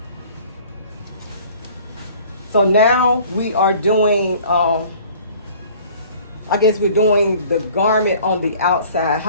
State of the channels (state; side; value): inverted; both; correlation -0.51